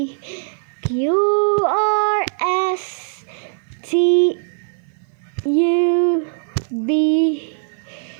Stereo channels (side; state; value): left; silent; 56 dB below the other